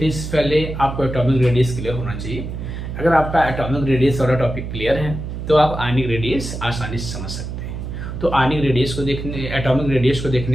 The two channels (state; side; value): noise; right; hum, 7 dB below the sound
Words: से पहले आपको एटॉमिक रेडियस क्लियर होना चाहिए। अगर आपका एटॉमिक रेडियस वाला टॉपिक क्लियर है तो आप आयनिक रेडियस आसानी से समझ सकते हैं। तो आयनिक रेडियस को देखने, एटॉमिक रेडियस को